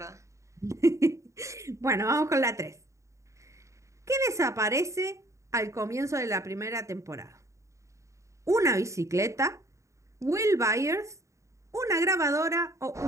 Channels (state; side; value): late; left; 0.15 ms